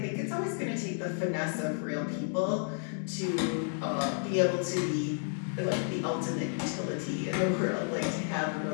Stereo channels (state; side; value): silent; right; 57 dB below the other